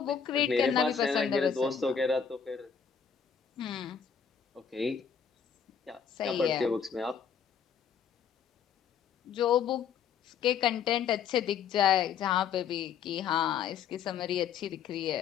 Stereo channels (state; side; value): quieter; right; 7.3 dB